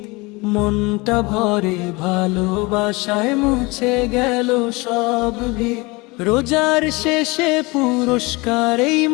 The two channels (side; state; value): right; quieter; 24.9 dB